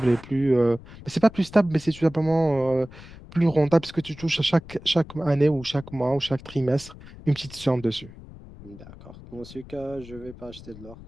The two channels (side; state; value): left; noise; rumble, 18 dB below the sound